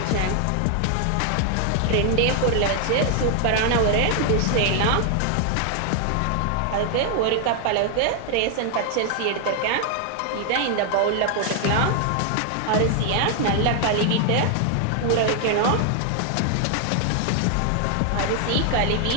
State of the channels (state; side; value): different; both; correlation 0.00